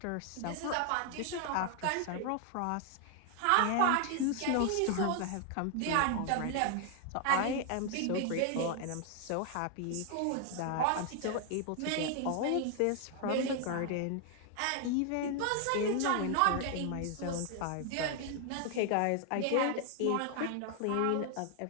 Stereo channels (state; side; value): different; both; correlation 0.00